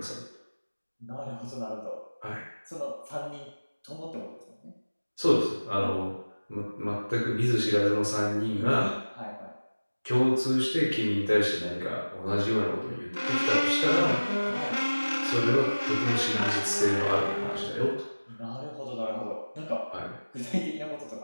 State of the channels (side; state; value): both; inverted; correlation -1.00